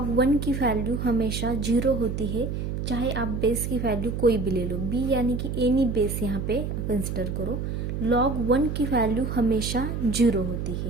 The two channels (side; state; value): right; noise; hum, 3 dB below the sound